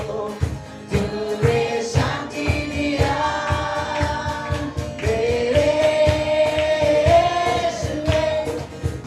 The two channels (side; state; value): both; identical; correlation 1.00